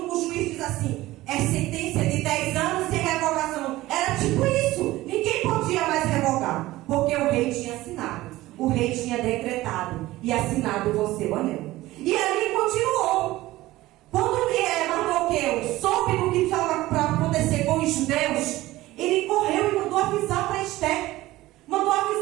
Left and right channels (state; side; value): quieter; left; 17.3 dB